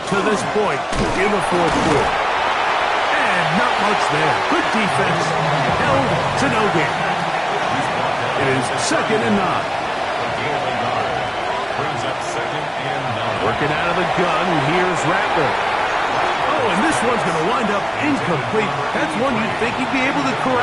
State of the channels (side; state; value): both; identical; correlation 1.00